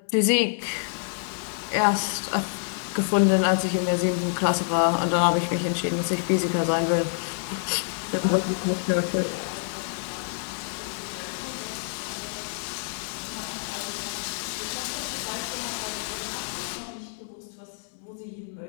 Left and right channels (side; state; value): right; silent; 60 dB below the other